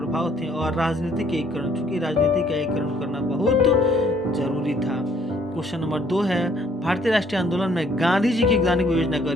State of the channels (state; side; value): normal; both; correlation 0.63